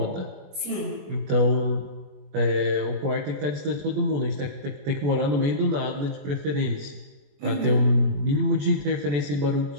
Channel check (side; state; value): left; late; 21 ms